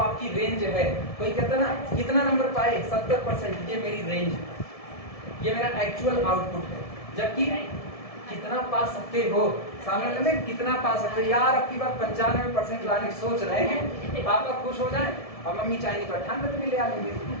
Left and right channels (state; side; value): late; right; 1.7 ms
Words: रेंज है। कोई कहता है ना कितना नंबर पाए 70%, ये मेरी रेंज है, ये मेरा एक्चुअल आउटपुट है। जबकि कितना पा सकते हो, सामने वाले में कितना पा सकते हो, यार अब की बार 95% लाने की सोच रहे हैं, पापा खुश हो जाएं और मम्मी चाहेंगी तो 98 भी ले आएंगे